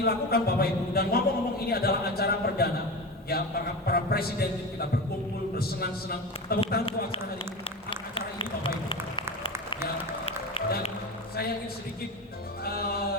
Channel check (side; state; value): both; normal; correlation 0.25